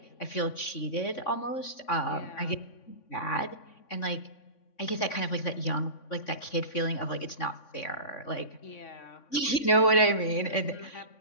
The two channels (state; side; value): late; right; 3.5 ms